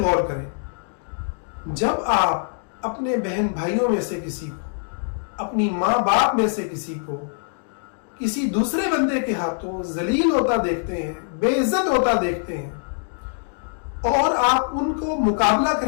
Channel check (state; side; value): silent; right; digital silence